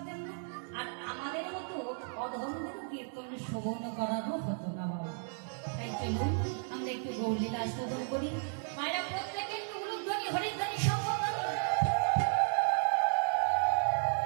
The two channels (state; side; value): silent; left; 55 dB below the other